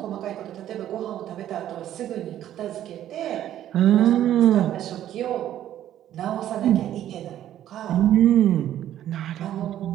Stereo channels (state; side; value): quieter; left; 11.8 dB